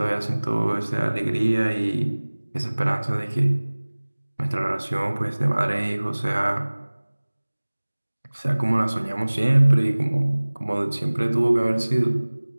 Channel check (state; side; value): inverted; both; correlation -1.00